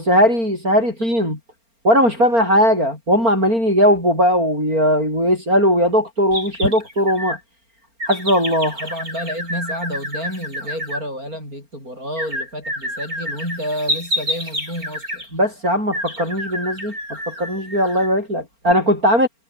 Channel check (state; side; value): late; left; 4.4 ms